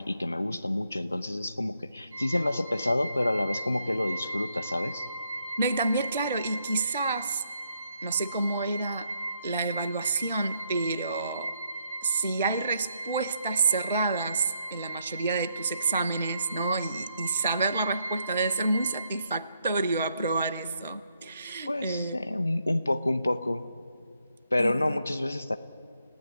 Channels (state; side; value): inverted; both; correlation -0.76